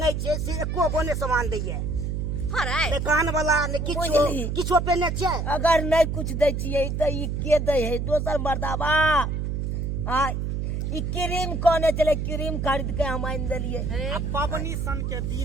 छे से एको बोने सामान दैए हरै ने कान वाला ने बुझली। किछो पेने छे अगर नहीं कुछ दे छिए त ई के दे है दोसर मर्दाबा आ ई क्रीम कोने चले क्रीम खरीद के हम आइन देलिए अब पावनी सन के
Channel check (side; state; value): right; noise; hum, 1 dB below the sound